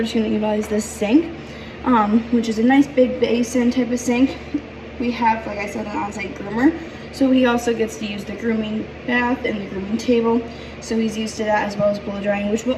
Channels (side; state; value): both; identical; correlation 1.00